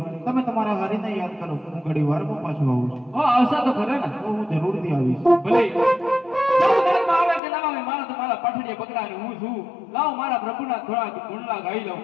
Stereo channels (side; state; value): right; drops out; at 7.4 s